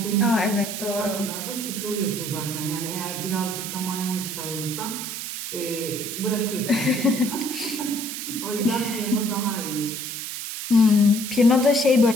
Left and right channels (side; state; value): right; noise; hiss, 6 dB below the sound